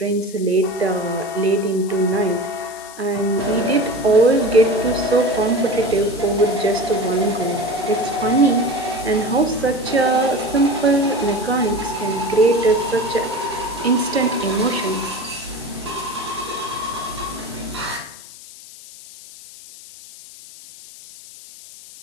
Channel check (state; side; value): noise; left; hiss, 18 dB below the sound